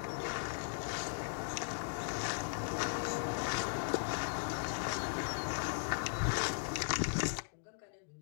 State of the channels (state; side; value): silent; right; digital silence